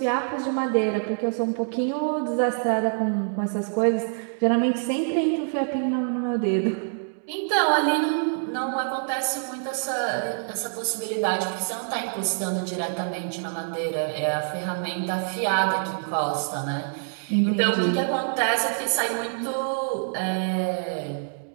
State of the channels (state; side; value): silent; left; digital silence